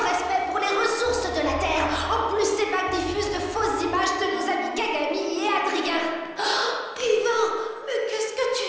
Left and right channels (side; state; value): both; identical; correlation 1.00